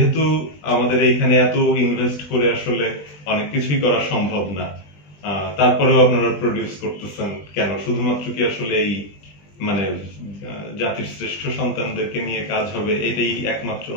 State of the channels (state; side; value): late; right; 20 ms